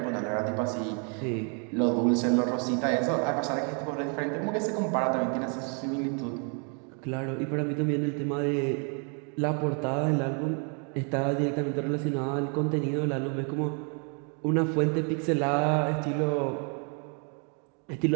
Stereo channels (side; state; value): left; quieter; 39.5 dB